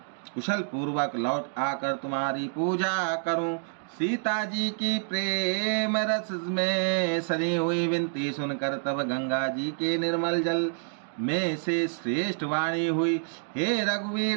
कुशल पूर्वक लौट आकर तुम्हारी पूजा करूं। सीता जी की प्रेम रस में सनी हुई विनती सुनकर तब गंगा जी के निर्मल जल में से श्रेष्ठ वाणी हुई, हे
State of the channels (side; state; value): left; silent; digital silence